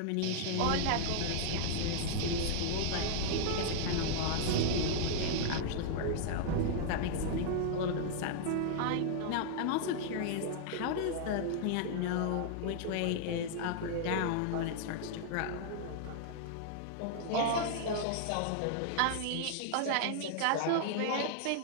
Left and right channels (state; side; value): different; both; correlation -0.01